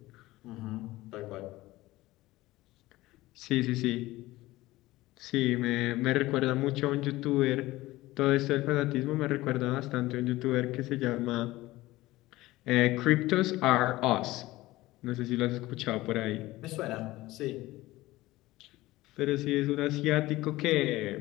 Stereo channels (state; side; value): quieter; right; 18.2 dB